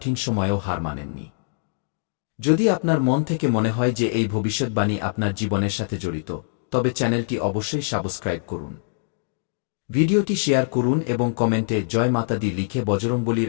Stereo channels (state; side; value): silent; right; digital silence